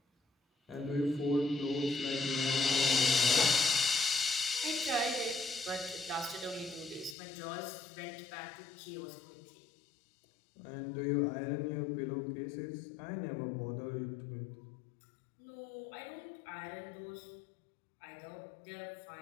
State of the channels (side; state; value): right; drops out; at 7.2 s